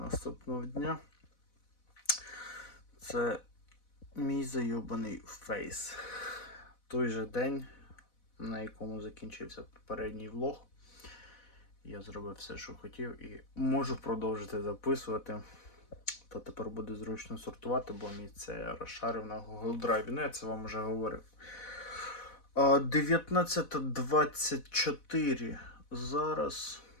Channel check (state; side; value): late; right; 4.1 ms